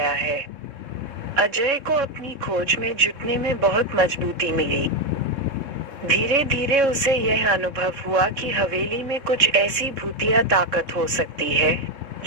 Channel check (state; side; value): late; left; 3.7 ms